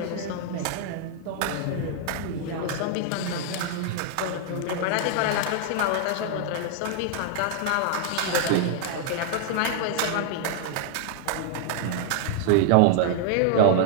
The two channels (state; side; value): different; both; correlation 0.00